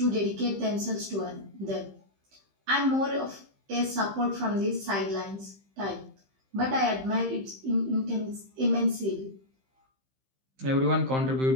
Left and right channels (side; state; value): left; late; 15 ms